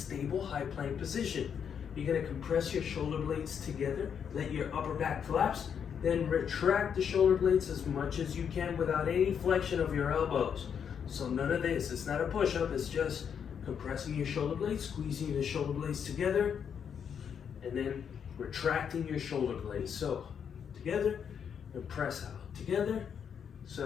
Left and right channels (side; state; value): right; quieter; 7.6 dB